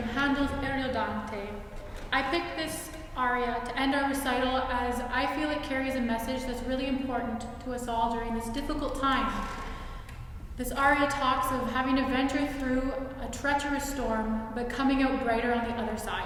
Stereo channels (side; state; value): both; identical; correlation 1.00